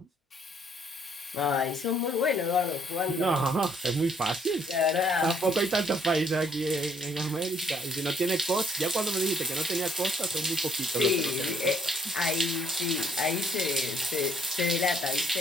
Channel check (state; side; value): normal; both; correlation 0.67